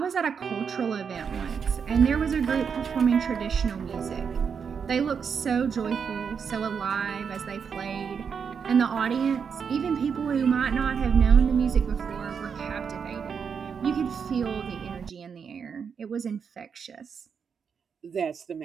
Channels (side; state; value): left; quieter; 6.5 dB